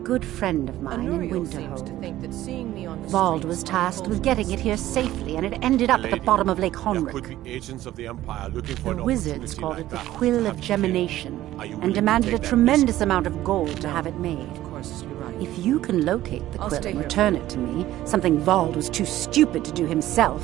friend of mine in Winterhold. Vald was tasked with getting it here safely, and it ended up at the bottom of Lake Honric. Agents of the Empire looking for The wizards called it the Quill of Gemination, and demanded a tremendous amount of gold to have it made. If you can locate the quill and return it to me, something Vald was too stupid to do himself,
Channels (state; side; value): quieter; left; 14.4 dB